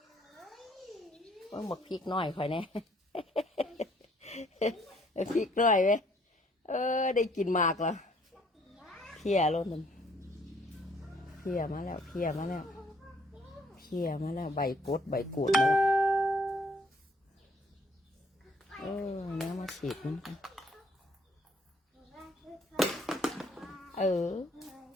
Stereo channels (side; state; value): both; normal; correlation 0.63